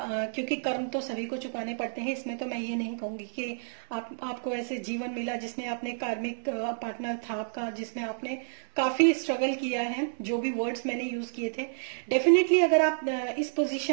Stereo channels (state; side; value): silent; left; digital silence